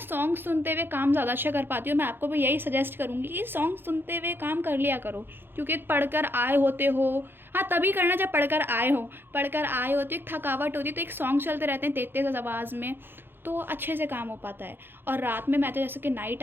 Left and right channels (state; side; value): late; left; 0.10 ms